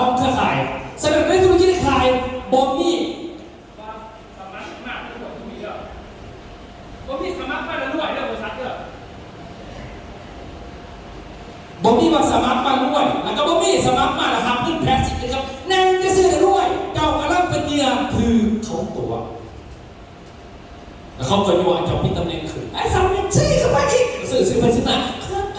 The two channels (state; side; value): identical; both; correlation 1.00